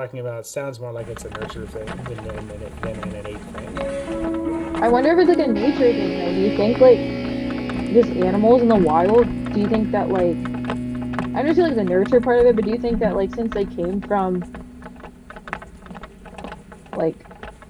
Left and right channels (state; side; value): identical; both; correlation 1.00